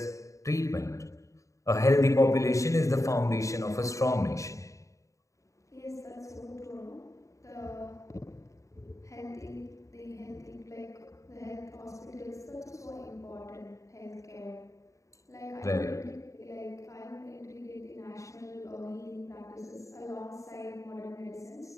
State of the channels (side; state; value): right; late; 0.15 ms